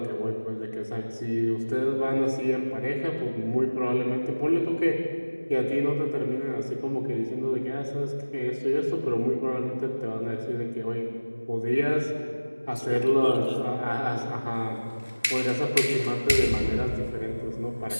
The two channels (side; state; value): both; inverted; correlation -1.00